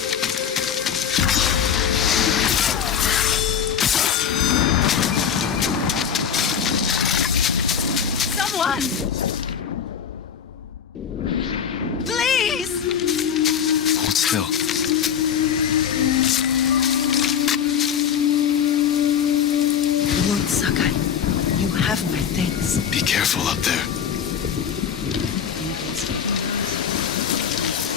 fulfill. Lord Sakai, you have my thanks. Be careful up there.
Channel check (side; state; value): right; quieter; 7.9 dB